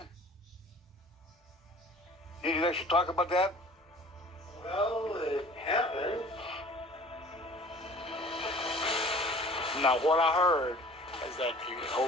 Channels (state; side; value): normal; both; correlation 0.47